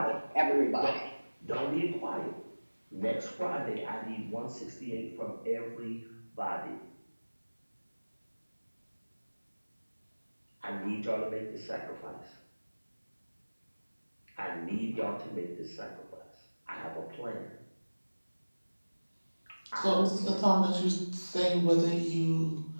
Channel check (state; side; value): inverted; both; correlation -1.00